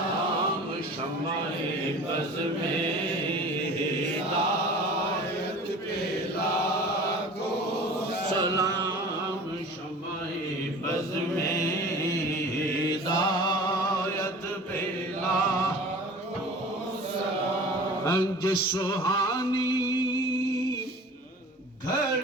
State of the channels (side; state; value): both; normal; correlation 0.41